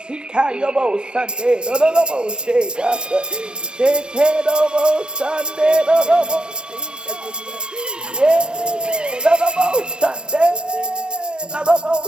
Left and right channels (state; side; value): late; left; 0.048 ms